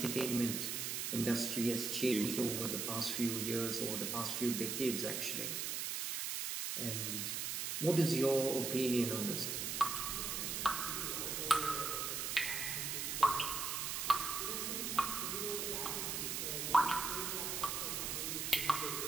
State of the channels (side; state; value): right; noise; hiss, 1 dB below the sound